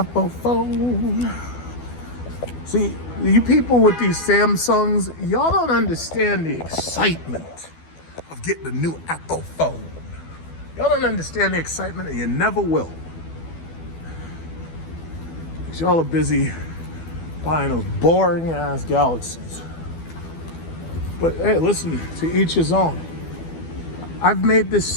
phone. See, you people with these Samsungs, y'all don't understand the excitement of getting a new Apple phone. Y'all don't understand the excitement, and you never will. Because y'all are busy buying those boring ass Galaxies. But hey, listen, to each his own. I've made this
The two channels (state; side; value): late; right; 12 ms